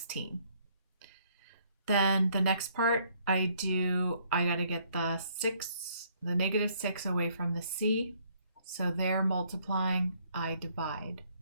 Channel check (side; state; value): both; inverted; correlation -0.66